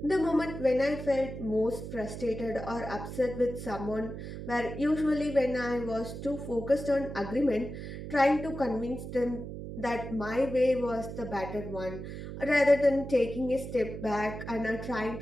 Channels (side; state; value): right; noise; hum, 8 dB below the sound